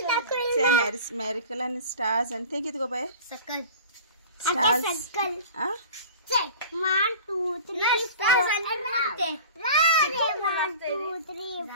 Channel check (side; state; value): both; inverted; correlation -0.39